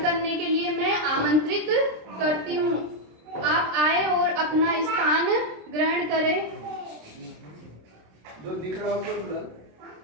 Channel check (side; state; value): left; late; 26 ms